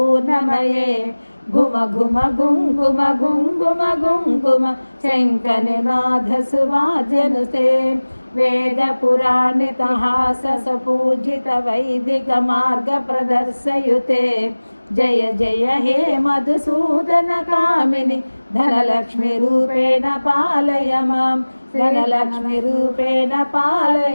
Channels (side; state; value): both; inverted; correlation -1.00